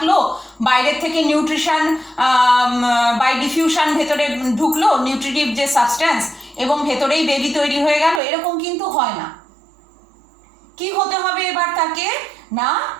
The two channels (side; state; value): left; drops out; at 8.2 s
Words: বাইরের থেকে নিউট্রিশন বাই ডিফিউশন ভেতরে ঢুকলো নিউট্রিটিভ যে সাবস্ট্যান্স, এবং ভেতরেই বেবি তৈরি হয়ে গেল, এরকম কিন্তু হয় না। কি হতে হবে এবার তাকে না